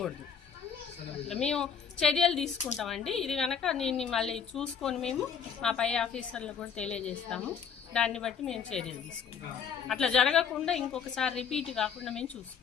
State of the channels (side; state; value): right; quieter; 6.9 dB